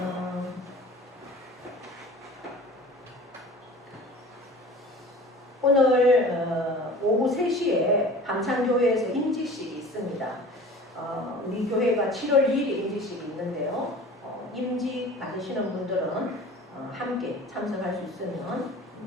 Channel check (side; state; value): both; normal; correlation 0.42